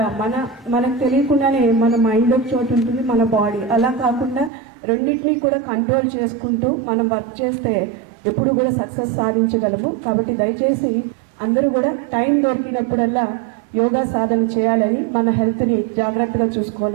మనకు తెలియకుండానే మన మైండ్ ఒక చోటు ఉంటుంది, మన బాడీ అలా కాకుండా రెండింటినీ కూడా కంట్రోల్ చేసుకుంటూ మనం వర్క్ చేస్తే ఎప్పుడు కూడా సక్సెస్ సాధించగలము. కాబట్టి దయచేసి అందరూ కూడా టైం దొరికినప్పుడల్లా యోగా సాధన చేయాలని, మన హెల్త్ని జాగ్రత్తగా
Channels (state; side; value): drops out; left; at 4.5 s